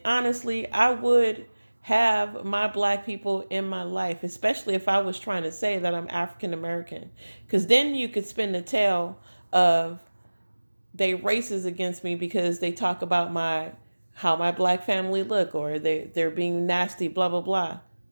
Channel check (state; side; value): inverted; both; correlation -1.00